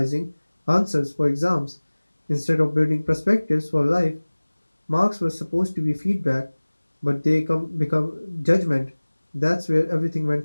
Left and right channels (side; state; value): both; inverted; correlation -1.00